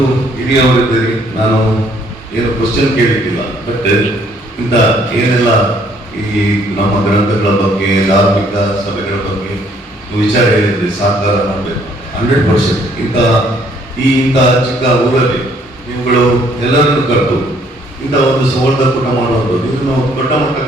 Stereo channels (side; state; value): both; normal; correlation 0.64